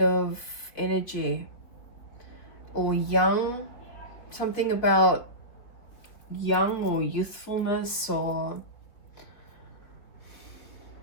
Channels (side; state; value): right; late; 3.8 ms